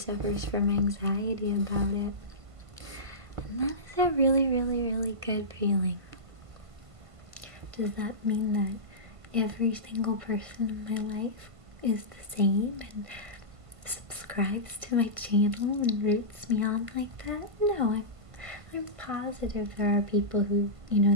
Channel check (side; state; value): left; late; 1.5 ms